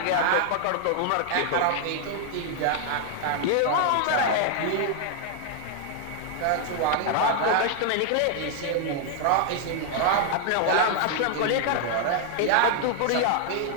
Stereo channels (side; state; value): both; different; correlation 0.00